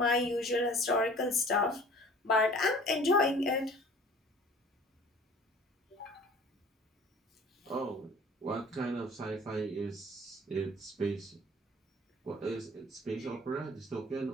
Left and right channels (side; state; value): both; normal; correlation 0.48